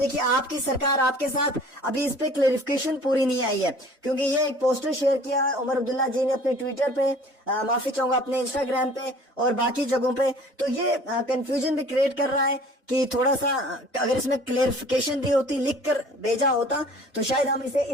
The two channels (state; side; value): normal; both; correlation 0.49